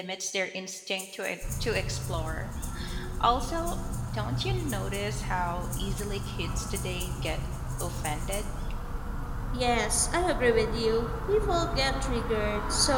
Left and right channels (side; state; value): both; identical; correlation 1.00